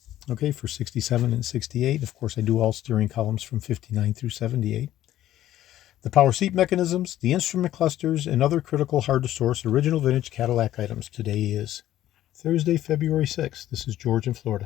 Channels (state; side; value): quieter; right; 13.1 dB